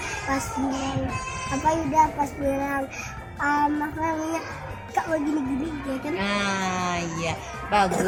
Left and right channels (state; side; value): identical; both; correlation 1.00